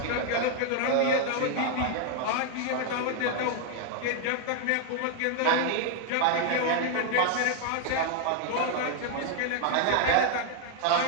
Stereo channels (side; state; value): both; different; correlation 0.00